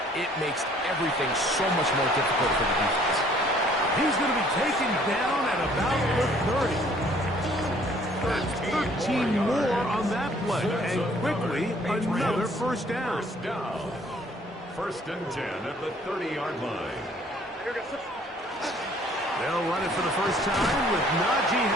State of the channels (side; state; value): both; normal; correlation 0.59